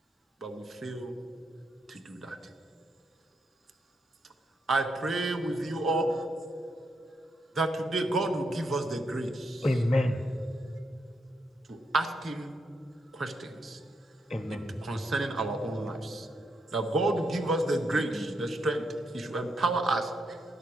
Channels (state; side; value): normal; both; correlation 0.80